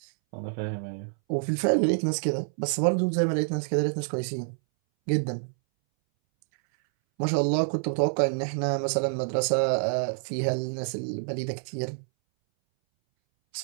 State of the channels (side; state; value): left; silent; 60 dB below the other